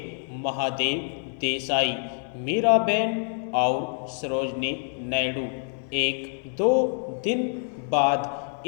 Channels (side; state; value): right; silent; 59 dB below the other